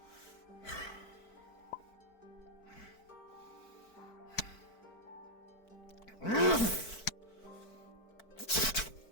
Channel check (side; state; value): right; late; 4.5 ms